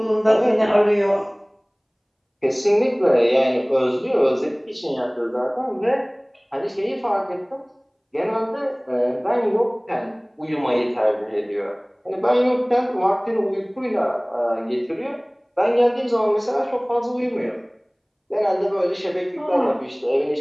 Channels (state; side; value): identical; both; correlation 1.00